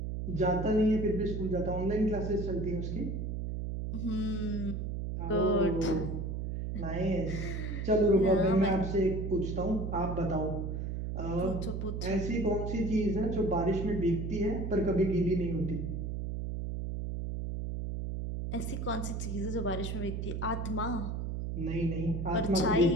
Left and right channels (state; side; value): noise; right; hum, 3 dB below the sound